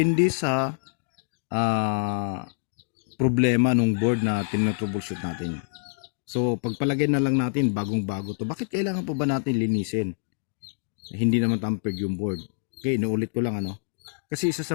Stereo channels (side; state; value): right; silent; digital silence